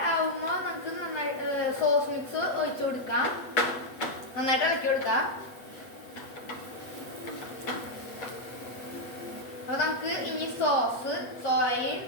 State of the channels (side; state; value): right; late; 8.2 ms